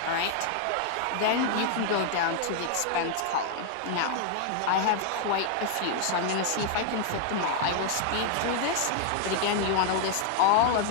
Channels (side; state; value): both; different; correlation 0.00